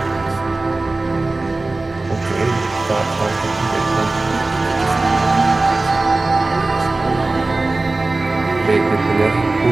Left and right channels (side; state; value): left; quieter; 3.2 dB